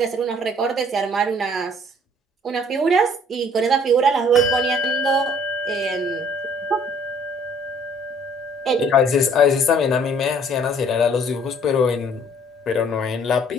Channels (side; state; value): both; normal; correlation 0.58